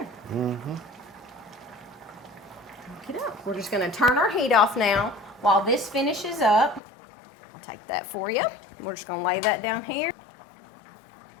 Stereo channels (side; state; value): right; drops out; at 6.8 s